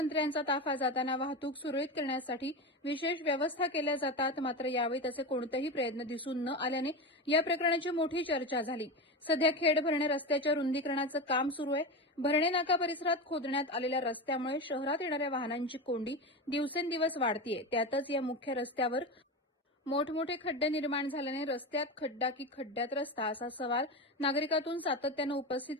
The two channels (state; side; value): normal; both; correlation 0.21